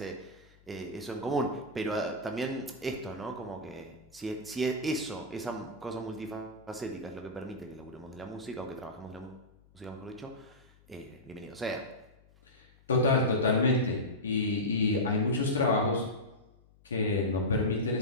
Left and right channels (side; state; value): left; noise; hum, 28 dB below the sound